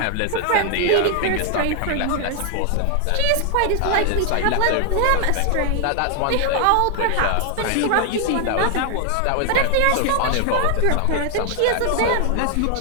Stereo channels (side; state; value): both; different; correlation 0.00